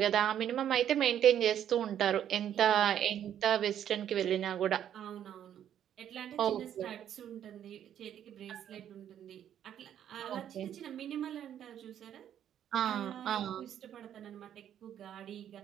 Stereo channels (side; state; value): left; quieter; 10.1 dB